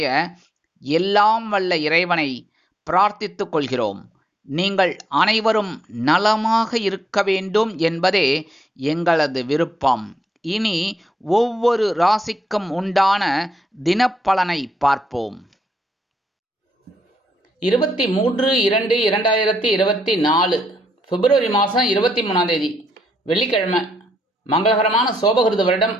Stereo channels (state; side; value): normal; both; correlation 0.78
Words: எல்லாம் வல்ல இறைவனை பிரார்த்தித்துக் கொள்கிறோம். நீங்கள் அனைவரும் நலமாக இருக்க வேண்டும் என்பதே எங்களது விருப்பம். இனி ஒவ்வொரு ராசிக்கும் உண்டான தினப்பலனை பார்ப்போம். 23/2/2024 பிப்ரவரி மாதம் 23ஆம் தேதி வெள்ளிக்கிழமை. மங்களகரமான சோபகிருத வருடம்